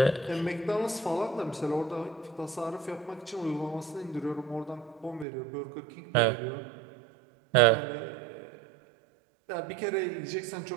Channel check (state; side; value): drops out; left; at 5.2 s